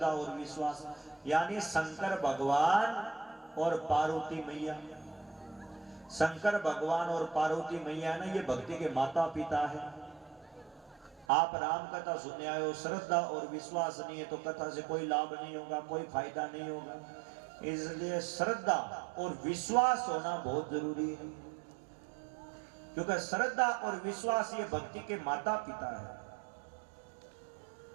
और विश्वास यानी शंकर भगवान और पार्वती मैया। शंकर भगवान और पार्वती मैया ना ये भक्ति के माता पिता है। आप राम कथा सुनने आए हो, श्रद्धा और विश्वास नहीं है तो कथा से कोई लाभ नहीं होगा, कोई फायदा नहीं होगा। इसलिए श्रद्धा और विश्वास होना बहुत जरूरी है, क्योंकि श्रद्धा और विश्वास ये भक्ति के माता पिता है।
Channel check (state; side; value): drops out; left; at 11.2 s